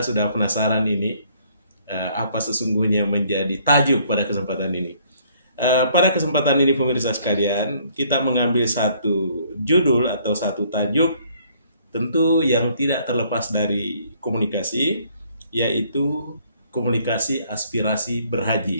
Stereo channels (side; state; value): both; inverted; correlation -0.63